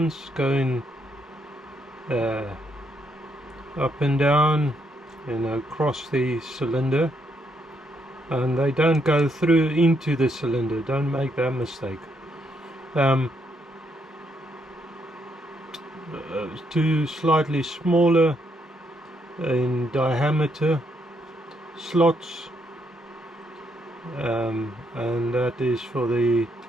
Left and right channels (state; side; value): normal; both; correlation 0.76